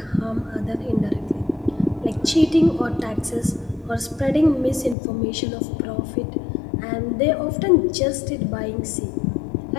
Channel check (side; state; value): right; drops out; at 5.0 s